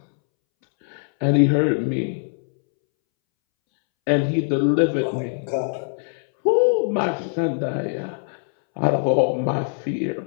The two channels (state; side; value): silent; right; 64 dB below the other